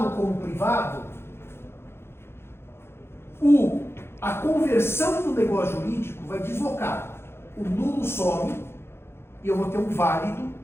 como privado, a conversão do negócio jurídico vai deslocar. O nulo some e eu vou ter um válido,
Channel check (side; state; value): right; late; 0.12 ms